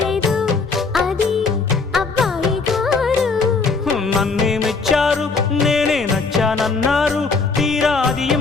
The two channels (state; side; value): quieter; right; 4.4 dB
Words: లేదు అది అబ్బాయి గారు నన్నేమిచ్చారు నేనే నచ్చానన్నారు తీరా అది